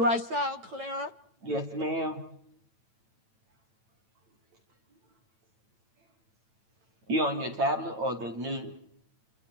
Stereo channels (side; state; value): left; late; 9.0 ms